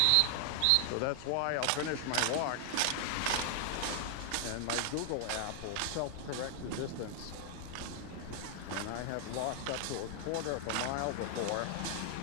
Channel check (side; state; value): both; different; correlation 0.00